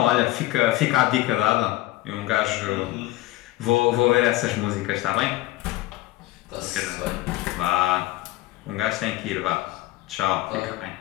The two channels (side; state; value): right; quieter; 17.1 dB